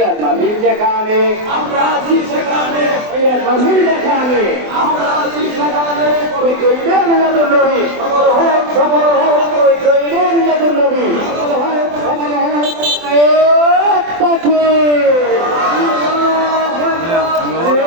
নবী যেখানে আমরা আছি সেখানে, মিলাদ নবী যেখানে আমরা আছি সেখানে, পবিত্র ঈদে মিলাদুন নবী সফল হোক সফল হোক, পবিত্র ঈদে মিলাদুন নবী সফল হোক সফল হোক।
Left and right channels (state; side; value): late; left; 24 ms